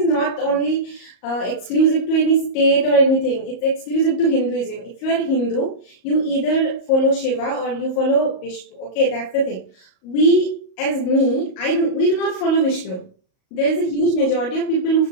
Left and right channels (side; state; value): right; late; 38 ms